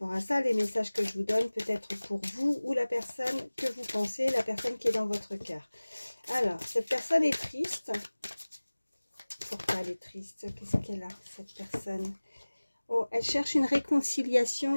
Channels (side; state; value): both; inverted; correlation -1.00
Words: à ça. Les messages que je vous donne peut être pour vous ou la personne que vous pensez, la personne qui est dans votre cœur. Alors, cette personne est triste. Pourquoi elle est triste? Qu'est-ce qu'elle a, cette personne? Oh, elle cherche une réconciliation.